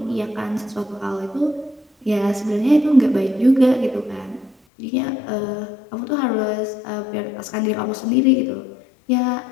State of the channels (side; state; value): right; drops out; at 4.5 s